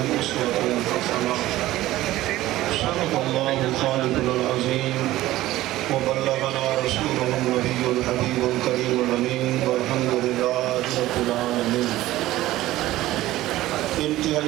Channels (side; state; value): left; quieter; 16.0 dB